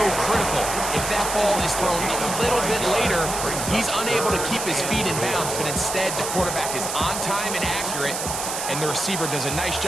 critical. If that ball is thrown a little bit later, he's unable to keep his feet in bounds, but instead the quarterback is on time and accurate, and the receiver does a nice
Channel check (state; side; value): noise; right; hiss, 4 dB below the sound